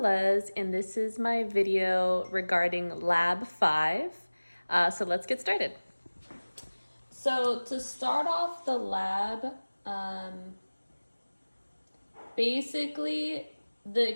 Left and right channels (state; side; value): inverted; both; correlation -1.00